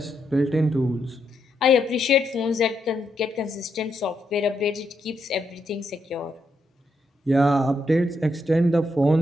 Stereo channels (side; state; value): both; normal; correlation 0.80